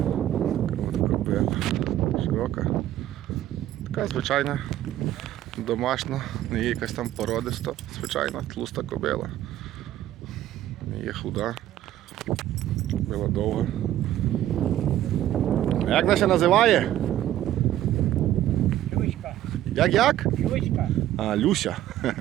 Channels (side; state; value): left; quieter; 12.9 dB